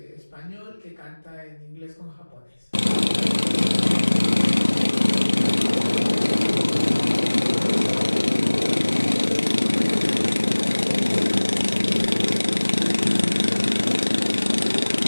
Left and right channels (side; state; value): both; inverted; correlation -1.00